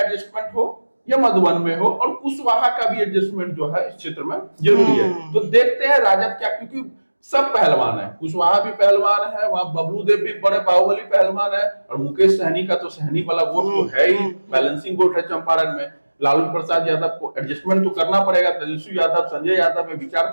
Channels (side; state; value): both; inverted; correlation -1.00